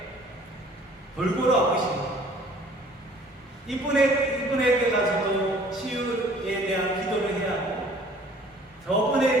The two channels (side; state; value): both; normal; correlation 0.53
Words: 골고루 아프십니까? 이분에게 가서도 치유에 대한 기도를 해야 하고